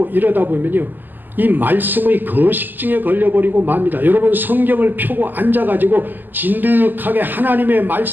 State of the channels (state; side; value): late; left; 0.088 ms